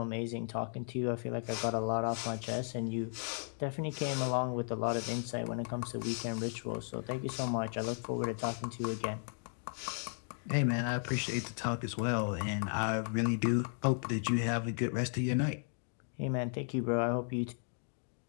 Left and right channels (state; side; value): silent; right; 54 dB below the other